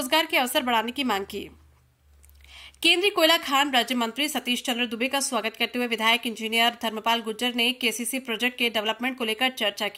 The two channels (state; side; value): identical; both; correlation 1.00